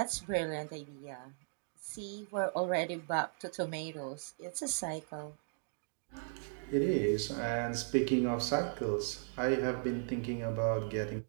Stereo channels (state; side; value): silent; left; digital silence